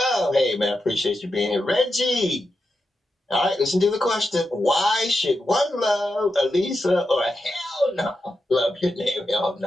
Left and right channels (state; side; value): normal; both; correlation 0.88